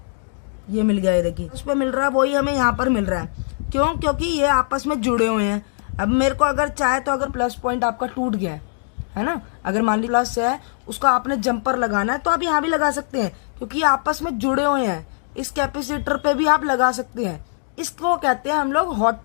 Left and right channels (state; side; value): silent; right; digital silence